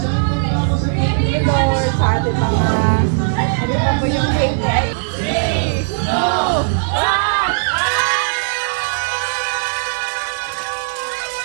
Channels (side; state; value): left; silent; digital silence